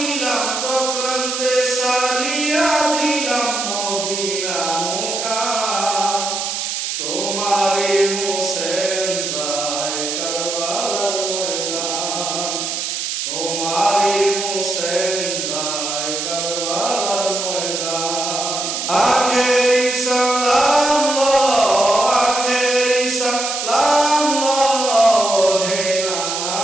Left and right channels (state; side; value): noise; right; hiss, 3 dB below the sound